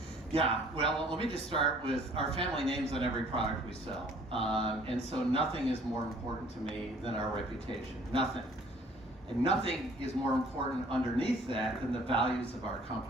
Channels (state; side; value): normal; both; correlation 0.55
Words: Yeah, well, let me just start with our family names on every product we sell. And so nothing is more important to me than our reputation, nothing. And nothing is more important underneath that than the values of our